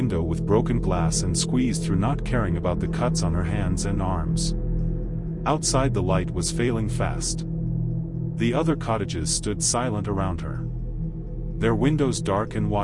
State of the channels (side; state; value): both; identical; correlation 1.00